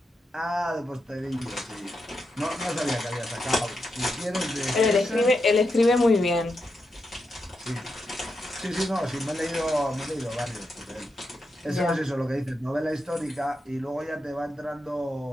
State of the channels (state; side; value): normal; both; correlation 0.85